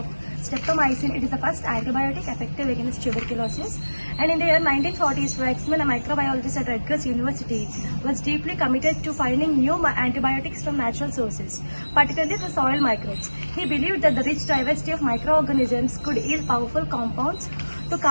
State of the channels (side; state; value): both; inverted; correlation -1.00